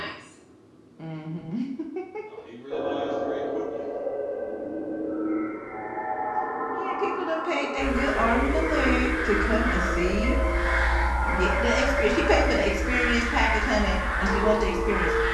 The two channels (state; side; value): identical; both; correlation 1.00